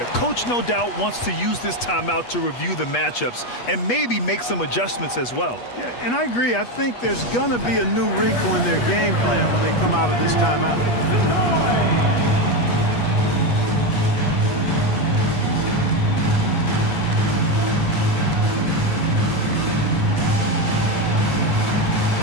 coach no doubt wants to use this timeout to review the matchups and maybe make some adjustments as well. Yeah, and I agree. I think there's going to be a new wrinkle in their game plan when they come out of this timeout.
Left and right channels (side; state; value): right; late; 8.3 ms